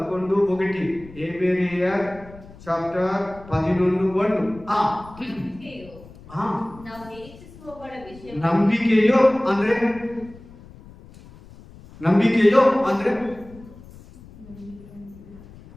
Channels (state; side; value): noise; left; rumble, 20 dB below the sound